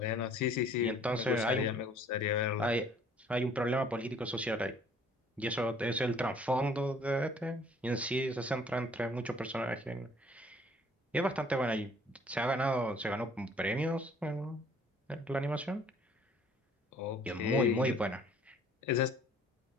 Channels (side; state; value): both; normal; correlation 0.56